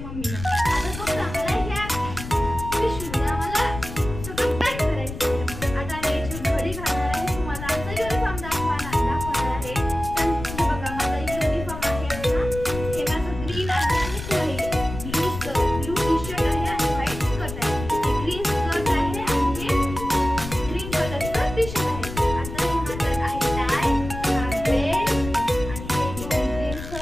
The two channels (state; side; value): noise; left; rumble, 9 dB below the sound